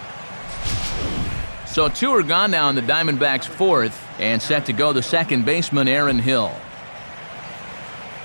So 2 are gone now in the Diamondbacks' 4th, and set to go the second baseman, Aaron Hill.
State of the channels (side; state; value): both; inverted; correlation -1.00